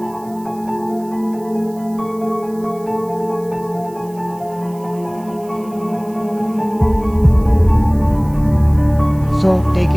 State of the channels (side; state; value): right; noise; hiss, 25 dB below the sound